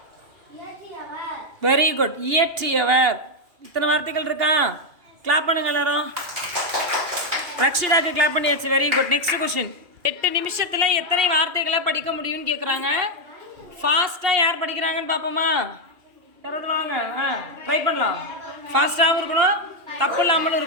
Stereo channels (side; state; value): left; late; 2.8 ms